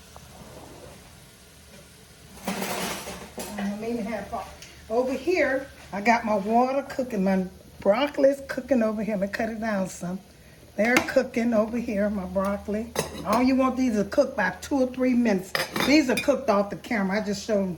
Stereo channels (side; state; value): both; identical; correlation 1.00